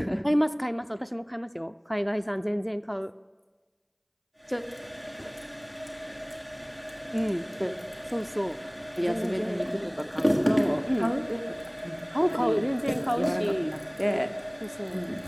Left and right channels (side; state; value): both; identical; correlation 1.00